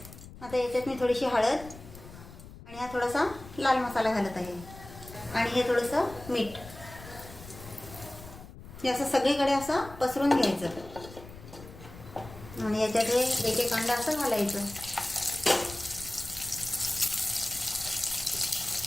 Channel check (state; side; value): noise; left; rumble, 16 dB below the sound